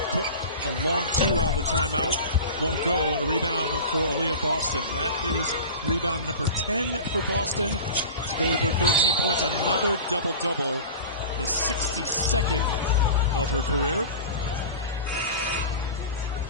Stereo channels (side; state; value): both; inverted; correlation -0.33